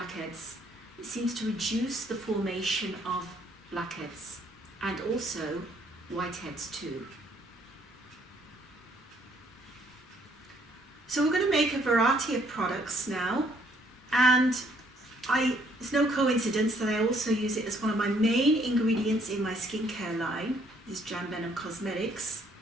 It seems to reduce the formation of blackheads and also whiteheads too. So we're going to make a variety of products now, and it's no coincidence that I also use it as one of my main ingredients in my skincare line. This is Jan Benham Cosmetics.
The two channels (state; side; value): normal; both; correlation 0.66